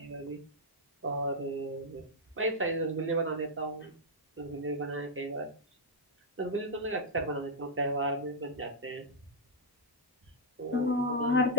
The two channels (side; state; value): both; normal; correlation -0.06